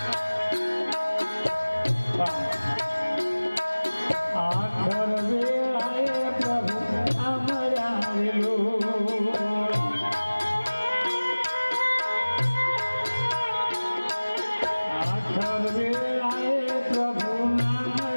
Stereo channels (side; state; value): both; inverted; correlation -1.00